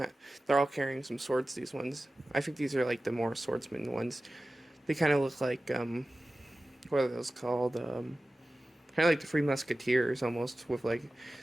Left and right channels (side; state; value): both; normal; correlation 0.96